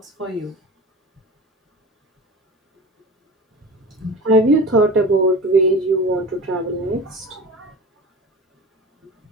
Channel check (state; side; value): normal; both; correlation 0.33